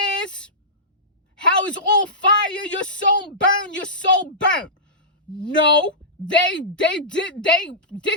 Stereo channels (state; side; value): normal; both; correlation -0.17